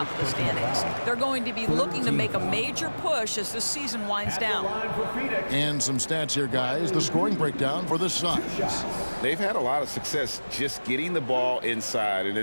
of the standings. They're going to be looking to make a major push as the season winds down. And some stats here, guys. The scoring breakdown for the Suns. They've had a lot of success just getting the ball inside, and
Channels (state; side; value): inverted; both; correlation -1.00